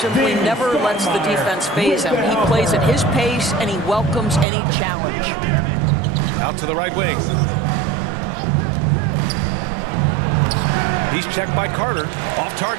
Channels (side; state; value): left; drops out; at 4.5 s